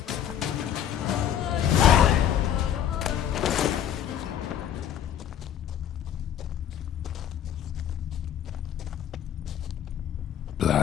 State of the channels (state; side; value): quieter; right; 10.0 dB